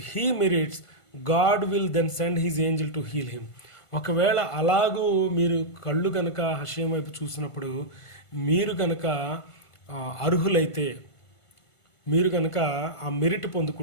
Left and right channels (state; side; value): late; right; 1.5 ms